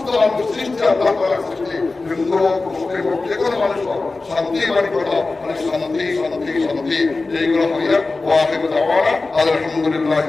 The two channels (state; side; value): quieter; right; 3.6 dB